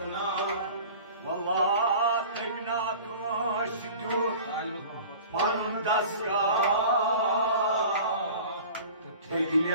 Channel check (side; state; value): both; inverted; correlation -0.41